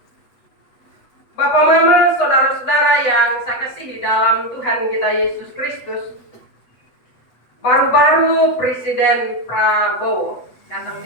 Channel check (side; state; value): right; late; 8.1 ms